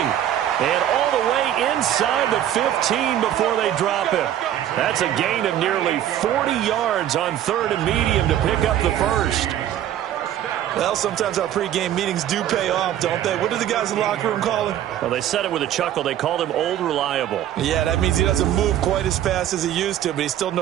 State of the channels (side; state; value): left; quieter; 11.4 dB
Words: And all the way inside the 15 before they drop him. That's a gain of nearly 40 yards on 3rd and medium to pick up the first. Well, sometimes our pregame meetings do pay off, don't they? What do the guys in the locker room call him? Well, they said it with a chuckle. They called him Old Reliable. Yeah, that means he doesn't move quite as fast as he used to, but he still